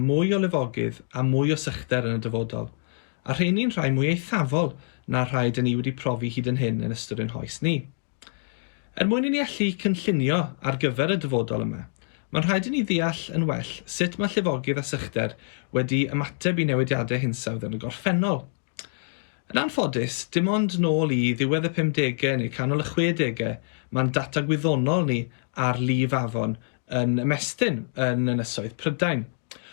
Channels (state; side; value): silent; right; digital silence